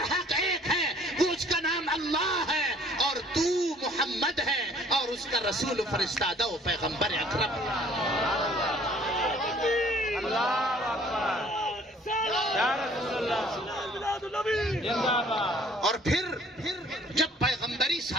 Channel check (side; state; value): both; normal; correlation 0.56